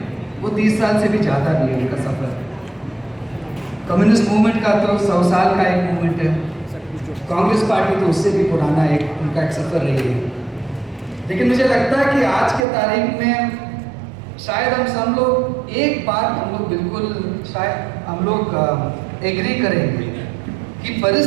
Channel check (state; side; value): drops out; left; at 12.7 s